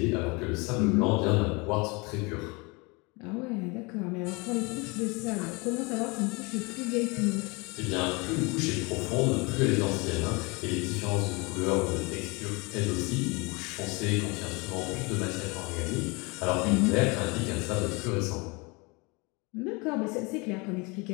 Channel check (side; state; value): right; quieter; 27.7 dB